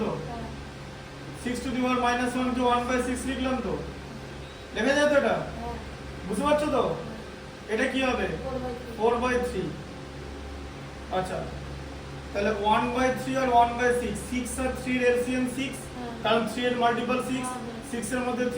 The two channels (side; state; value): both; identical; correlation 1.00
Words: তো। 6 to the power -1 কে 1/6 লিখলাম তো, লেখা যায় তো এটা? বুঝতে পারছো তো? এটা কি হবে? 4/3। আচ্ছা তাহলে 1/3 আর 1/6, 6 আর 3 এর এলসিএম 6, কারণ 3 এর মাল্টিপল 6, 6 এর মধ্যে